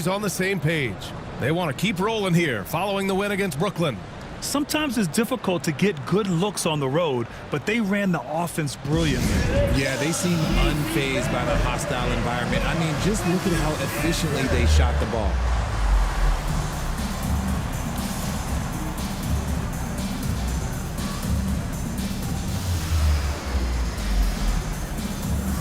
on the same page. They want to keep rolling here following the win against Brooklyn. Sometimes it's difficult to get good looks on the road, but they ran the offense brilliantly. Yeah, they seem unfazed by the hostile environment. I mean, just look at how efficiently they shot the ball.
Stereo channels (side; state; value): both; identical; correlation 1.00